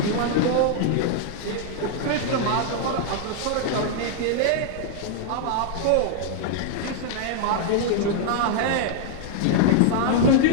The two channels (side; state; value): both; different; correlation 0.00